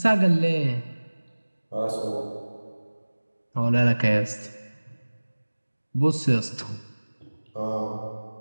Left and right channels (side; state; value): both; inverted; correlation -1.00